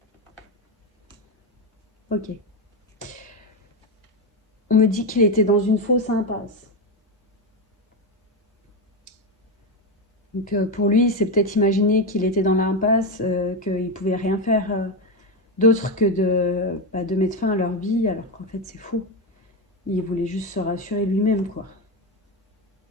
Ok. On me dit qu'il était dans une fausse impasse. Donc pour lui, c'est peut-être imaginer qu'il était dans l'impasse, qu'il pouvait rien faire d'autre que de mettre fin à leur vie, alors qu'en fait c'est faux. Il voulait juste se rassurer lui-même, quoi.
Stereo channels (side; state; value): both; normal; correlation 0.11